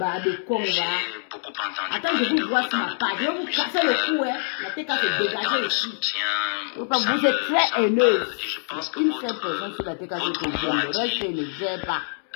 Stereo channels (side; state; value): right; silent; digital silence